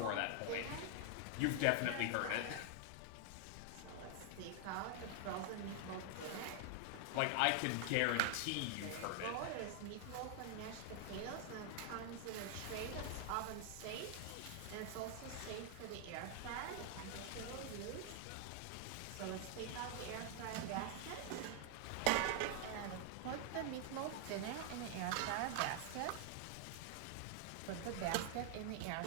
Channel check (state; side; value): different; both; correlation 0.00